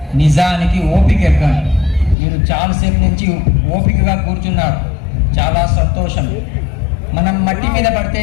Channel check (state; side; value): drops out; right; at 2.1 s